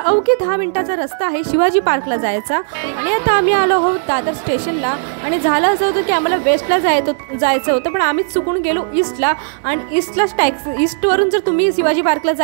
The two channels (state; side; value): silent; left; 61 dB below the other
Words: 10 मिनिटाचा रस्ता आहे शिवाजी पार्कला जायचा. आणि आता आम्ही आलो आहोत दादर स्टेशनला. आणि झालं असं होतं की आम्हाला वेस्टला जायचं होतं, पण आम्हीच चुकून गेलो ईस्टला. आणि ईस्टवरून जर तुम्ही शिवाजी पार्कला